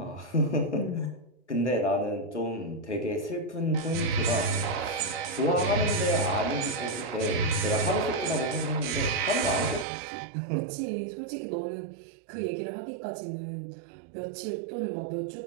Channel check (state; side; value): drops out; left; at 9.9 s